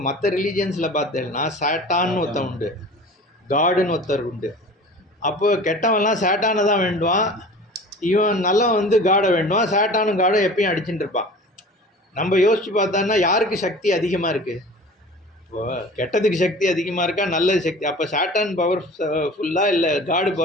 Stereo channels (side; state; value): both; normal; correlation 0.41